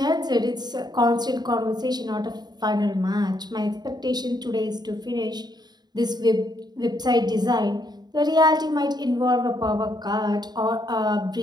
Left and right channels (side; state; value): left; late; 0.20 ms